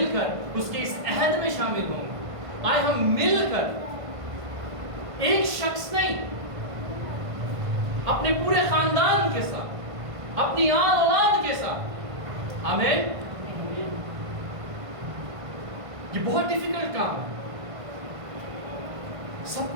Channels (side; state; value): left; late; 1.5 ms